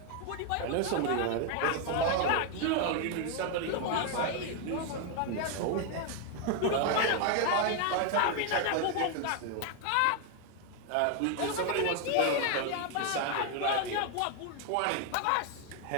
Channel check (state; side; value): different; both; correlation 0.01